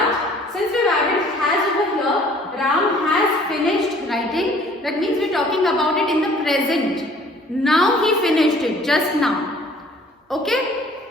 since we have added has over here, Ram has finished writing. That means we are talking about it in the present. Now he finished it, just now. Okay?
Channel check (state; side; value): normal; both; correlation 0.54